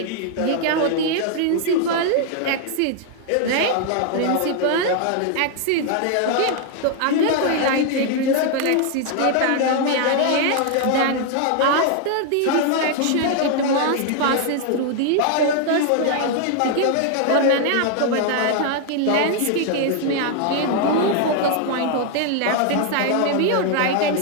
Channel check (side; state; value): both; different; correlation 0.00